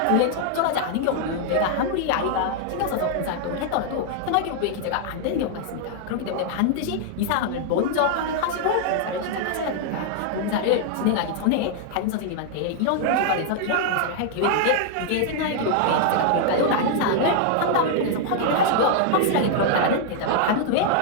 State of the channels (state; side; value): different; both; correlation 0.00